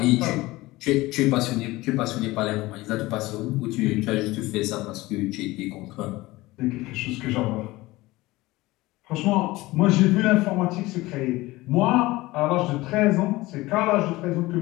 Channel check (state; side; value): quieter; right; 19.6 dB